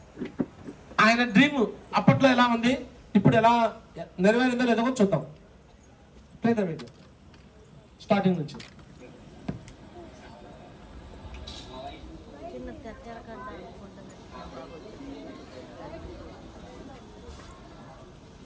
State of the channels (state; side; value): identical; both; correlation 1.00